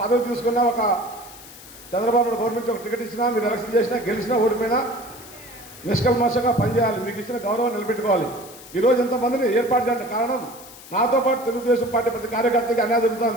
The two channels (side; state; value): left; noise; hiss, 18 dB below the sound